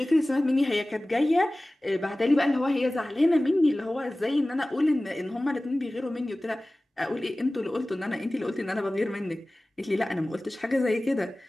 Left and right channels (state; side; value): normal; both; correlation 0.98